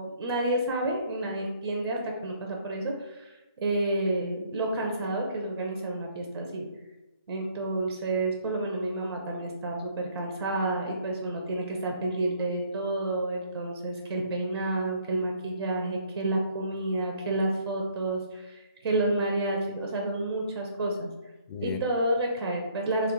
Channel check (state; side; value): inverted; both; correlation -0.62